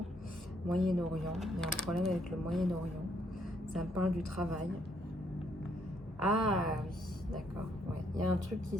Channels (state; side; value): normal; both; correlation 0.71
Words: Moyen-Orient, il y a un problème avec le Moyen-Orient. Ça me parle du travail. Ah oui, d'accord. Ouais. Il y a un truc qui